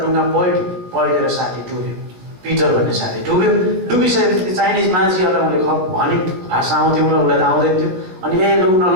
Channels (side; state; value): left; late; 16 ms